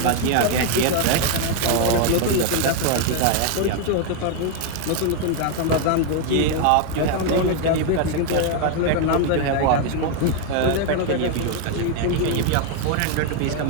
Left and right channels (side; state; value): both; different; correlation 0.01